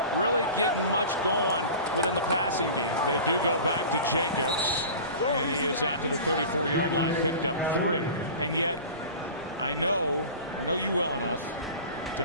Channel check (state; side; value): inverted; both; correlation -0.37